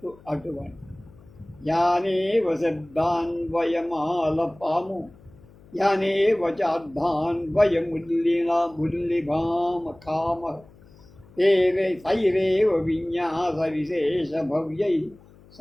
అటువంటి. యానేవ శబ్దాన్వయమాలపాము, యానేవ చార్థాన్వయముల్లిభామ కామ, తైరేవ విన్యాస విశేష భవ్యై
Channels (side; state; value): left; noise; hum, 25 dB below the sound